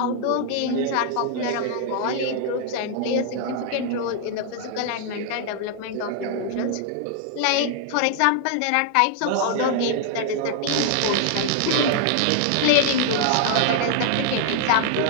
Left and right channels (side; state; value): both; different; correlation 0.00